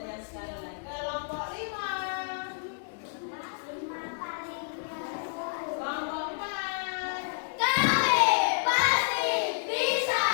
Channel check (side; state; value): right; silent; 58 dB below the other